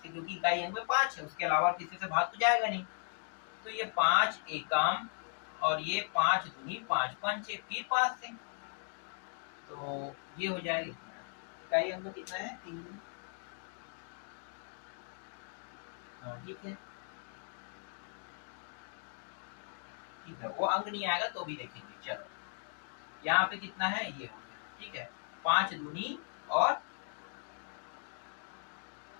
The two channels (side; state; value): right; silent; 53 dB below the other